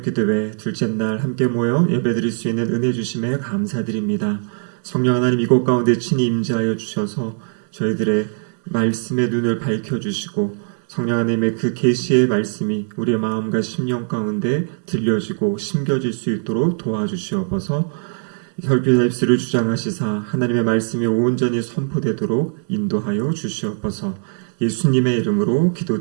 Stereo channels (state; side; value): silent; left; digital silence